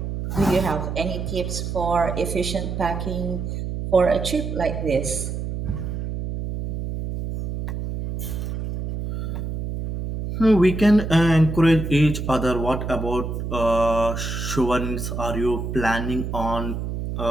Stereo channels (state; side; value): noise; right; hum, 4 dB below the sound